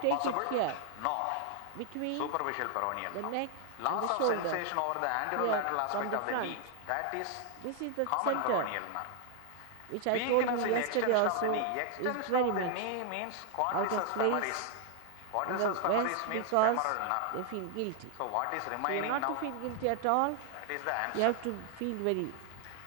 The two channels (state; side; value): different; both; correlation 0.00